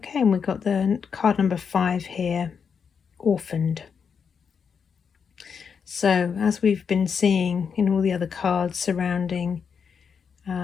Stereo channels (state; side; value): quieter; right; 6.5 dB